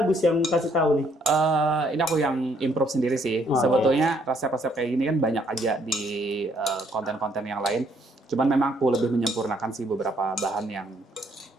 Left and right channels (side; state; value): both; normal; correlation 0.68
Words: Agus yang kasih tahu nih? Ini aku yang improve sendiri sih. Oh, Sebetulnya resep-resep kayak gini kan banyak aja di konten-konten yang lain. Cuman memang aku lebih menyempurnakan sih beberapa bahan yang